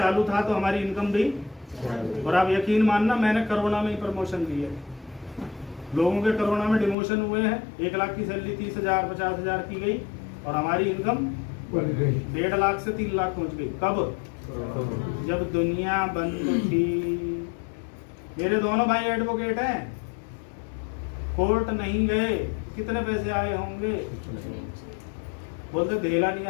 था, तो हमारी इनकम भी। और आप यकीन मानना, मैंने कोरोना में ही प्रमोशन दी है। लोगों के कोरोना में डिमोशन हुए हैं, 1 लाख की सैलरी 30,000 50,000 की गई, और हमारी इनकम 1.5 लाख से 3 लाख पहुंच गई। कब? जब दुनिया बंद थी। मेरे दोनों भाई एडवोकेट हैं, कोर्ट नहीं गए, कितने पैसे आए होंगे? बोलते धेला नहीं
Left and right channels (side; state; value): right; drops out; at 7.0 s